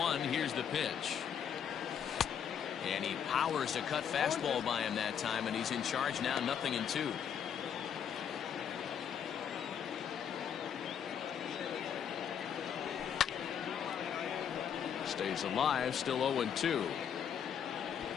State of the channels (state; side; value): quieter; right; 8.3 dB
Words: Here's the pitch. And he powers a cut fastball by him that time, and he's in charge now, 0-2. Stays alive, still 0-2.